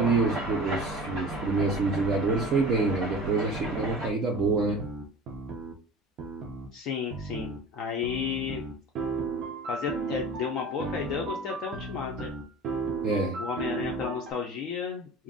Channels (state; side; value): normal; both; correlation 0.38